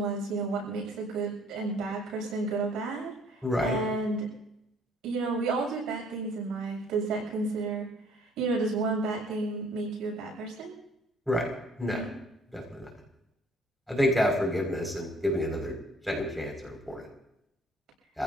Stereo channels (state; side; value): normal; both; correlation 0.58